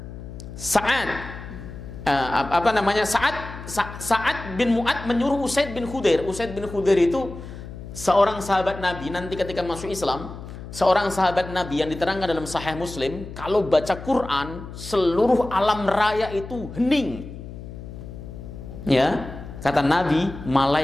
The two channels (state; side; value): noise; left; hum, 12 dB below the sound